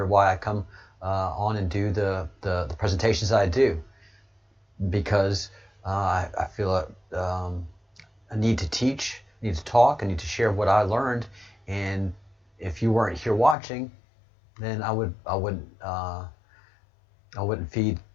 why I come on and do the presentations I do, because I feel a need to teach, I need to talk, I need to share what I learned. And if you weren't here watching, then I wouldn't feed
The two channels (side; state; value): right; drops out; at 13.6 s